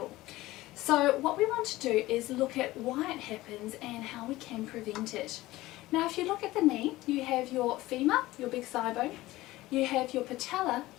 So what we want to do is look at why it happens and how we can prevent it. Now if you look at the knee, you have your femur, your big thigh bone, you have your patella,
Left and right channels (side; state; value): right; quieter; 17.8 dB